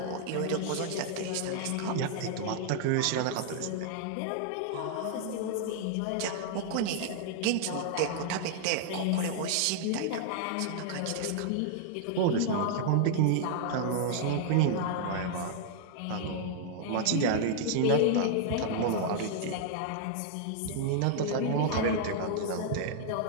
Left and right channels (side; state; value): both; different; correlation -0.01